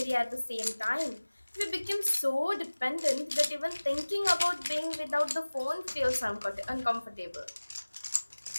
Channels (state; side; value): inverted; both; correlation -1.00